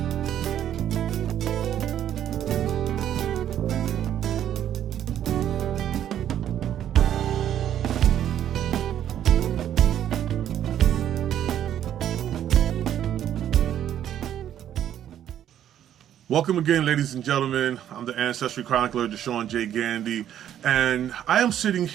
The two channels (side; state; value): left; quieter; 10.6 dB